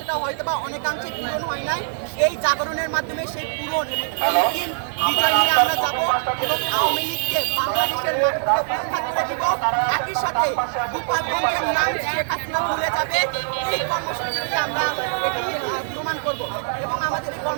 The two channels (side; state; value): left; silent; 64 dB below the other